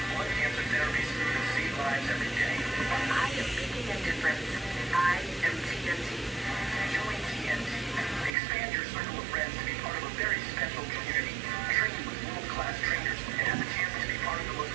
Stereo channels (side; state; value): left; drops out; at 8.3 s